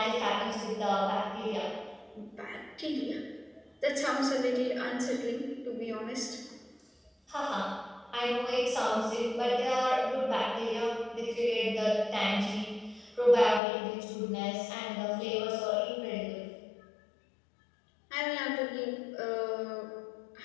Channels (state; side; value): drops out; right; at 13.6 s